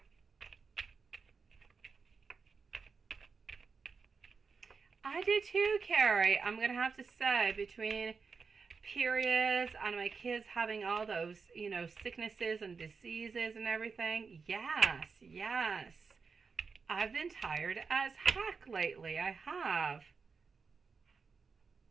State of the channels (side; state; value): left; quieter; 5.1 dB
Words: I do too, Carrie. I'm going to have to say, between periods and my kids having all those, you know, sicknesses and diseases and everything, yes. I've been tired as heck lately. I have.